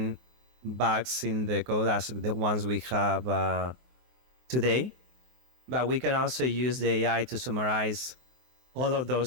bugs in the code as the ones we have today, but we can also use the AI to summarize all of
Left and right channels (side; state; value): left; late; 24 ms